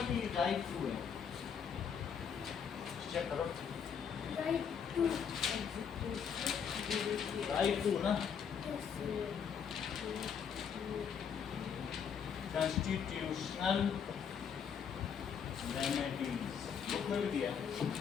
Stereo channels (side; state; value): right; quieter; 7.2 dB